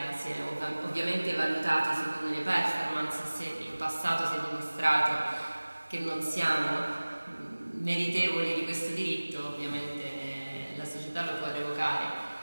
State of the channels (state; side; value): inverted; both; correlation -1.00